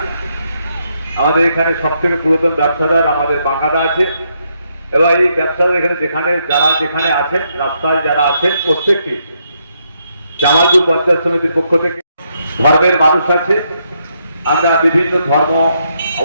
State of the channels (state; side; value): inverted; both; correlation -0.77